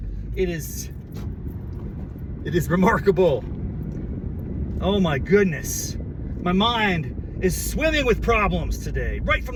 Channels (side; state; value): both; identical; correlation 1.00